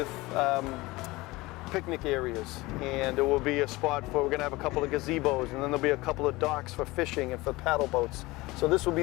picnic areas, and there will be a spot we're going to have a couple of gazebos, and then there'll be a couple of docks for fishing and for paddle boats. So this will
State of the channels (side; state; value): right; quieter; 21.0 dB